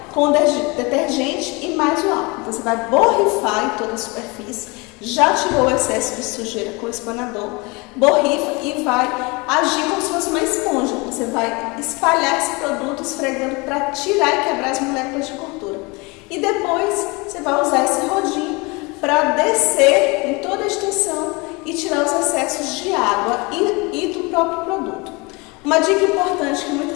com detergente e mais o álcool. Você vai borrifar em toda a superfície, já tirou o excesso de sujeira com o espanador, borrifa e vai agir como se fosse uma esponja. Você vai espalhar esse produto esfregando para tirar e quebrar as moléculas de gordura. E depois você vai usar esse rodinho para descer em toda a extensão e tirar os excessos de água e do próprio produto. Uma dica importante que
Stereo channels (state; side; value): quieter; right; 26.9 dB